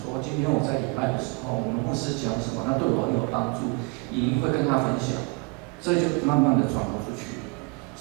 今天我在礼拜的时候，我们牧师讲什么，那对我很有帮助，你会跟他分享，这就慢慢的传播出去。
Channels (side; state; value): left; quieter; 29.5 dB